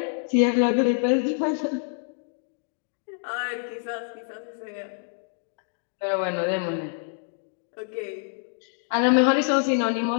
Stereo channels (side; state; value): right; silent; digital silence